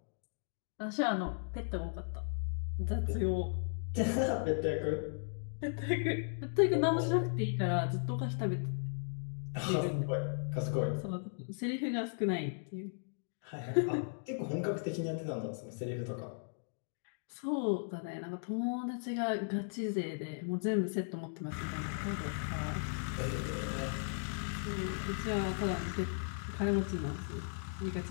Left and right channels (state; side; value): silent; right; digital silence